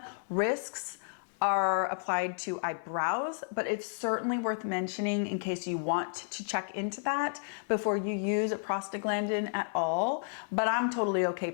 risks are applied to eyebrows, but it's certainly worth mentioning in case you want to check into that before you use a prostaglandin at all. But I'm totally okay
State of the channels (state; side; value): silent; right; 57 dB below the other